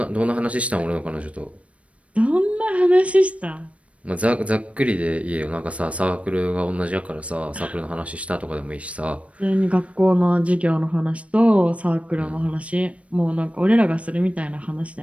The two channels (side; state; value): left; late; 0.063 ms